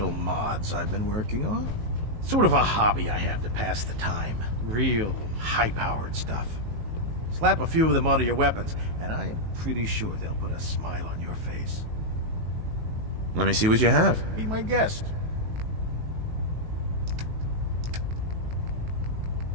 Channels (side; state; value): left; late; 19 ms